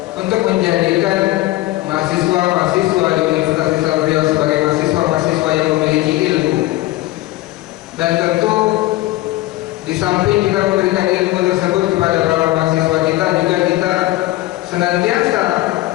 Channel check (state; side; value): quieter; right; 17.5 dB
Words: untuk menjadikan mahasiswa-mahasiswa di Universitas Islam Riau sebagai mahasiswa-mahasiswa yang memiliki ilmu. Dan tentu di samping kita memberikan ilmu tersebut kepada para mahasiswa kita, juga kita senantiasa